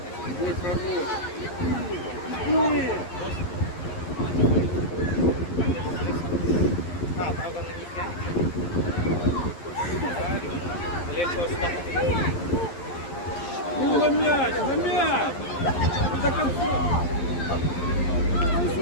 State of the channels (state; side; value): late; right; 11 ms